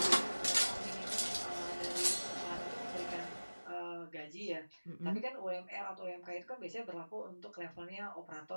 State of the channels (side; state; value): both; inverted; correlation -1.00